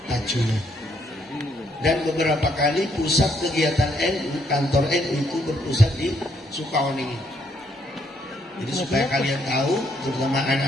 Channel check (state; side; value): normal; both; correlation 0.72